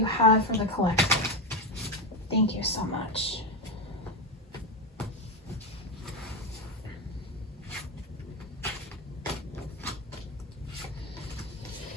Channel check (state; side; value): normal; both; correlation 0.13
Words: have for the collective? Thank you so much.